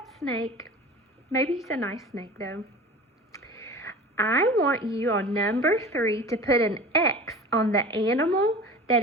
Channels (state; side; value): normal; both; correlation 0.38